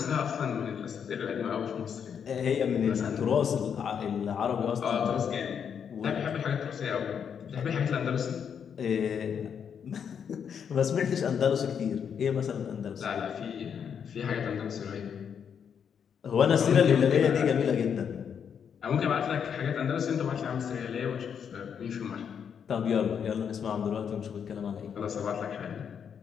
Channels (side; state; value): right; quieter; 7.5 dB